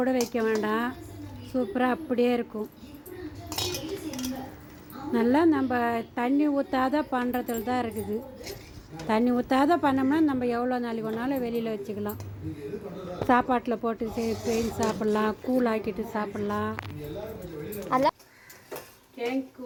கூட வைக்க வேண்டாம். சூப்பராக அப்படியே இருக்கும். நல்லா நம்ம தண்ணி ஊற்றாத பண்ணுறதுல தான் இருக்குது. தண்ணி ஊற்றாத பண்ணோம்னா நம்ம எவ்வளோ நாளைக்கு ஒன்றாலும் வெளியில் வச்சுக்கலாம். சாப்பாட்டில் போட்டு செஞ்சு சாப்பிட்லாம், கூழ் ஆக்கிட்டு சாப்பிட்லாம்.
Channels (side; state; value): both; identical; correlation 1.00